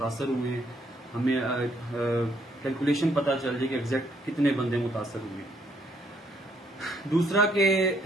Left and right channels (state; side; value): normal; both; correlation 0.69